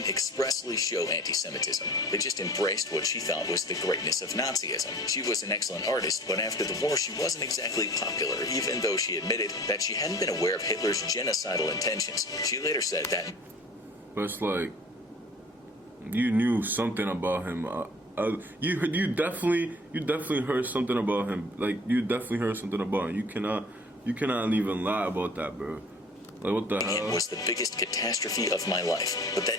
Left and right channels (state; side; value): normal; both; correlation 0.46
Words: expressly show anti-Semitism. They just embraced what she thought was the greatness of Nazism. She was an excellent artist, but after the war she wasn't exactly popular, even though she admitted that she hadn't been aware of Hitler's genocidal intentions. She later said that... But it's like, you knew something about him. You definitely heard something about him. Like, you definitely heard something about him. You cannot even lie about that, bro. Like, what the hell? It was the biggest catastrophe of my life. But